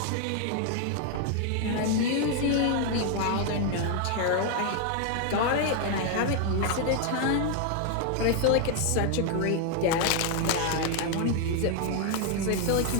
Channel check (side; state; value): both; different; correlation 0.00